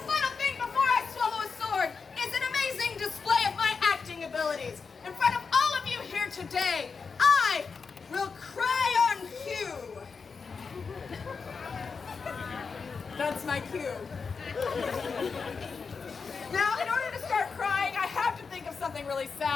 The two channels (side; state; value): right; quieter; 5.2 dB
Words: final thing before I swallow a sword is an amazing display of my acting abilities. In front of all of you here today, I will cry on cue. That's my cue. Now, in order to start crying, I have to think of something really